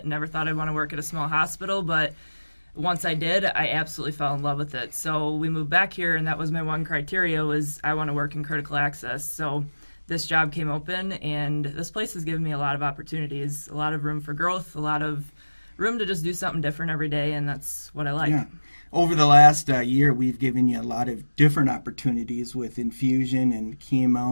never thought I'd want to work at a small hospital, but once I did, I absolutely fell in love with it. So we moved back here, and that was my one criteria, was I want to work in critical access. So this job came open, and this place has given me a lot of opportunities, a lot of room for growth, a lot of room to just do something different every day, and that's what I like. Yeah. Over the last year, we've given you a lot of different opportunities with infusion and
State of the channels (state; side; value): inverted; both; correlation -1.00